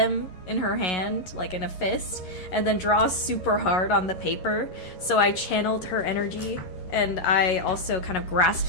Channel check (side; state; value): right; late; 11 ms